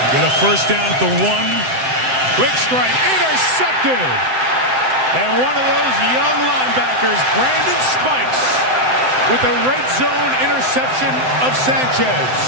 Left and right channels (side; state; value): left; late; 7.8 ms